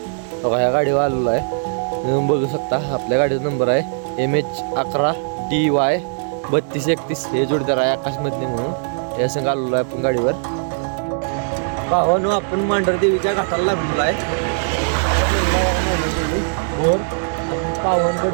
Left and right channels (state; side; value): silent; left; digital silence